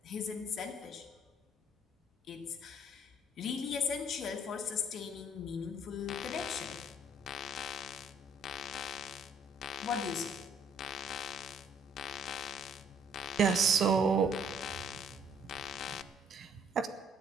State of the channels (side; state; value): both; normal; correlation 0.63